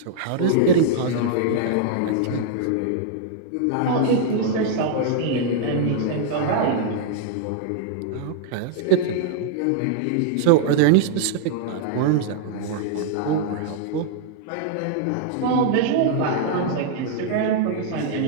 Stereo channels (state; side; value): different; both; correlation -0.01